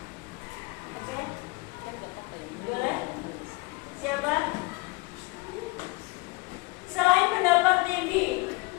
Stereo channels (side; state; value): right; quieter; 25.6 dB